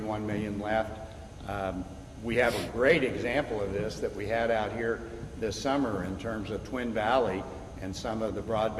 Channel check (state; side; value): identical; both; correlation 1.00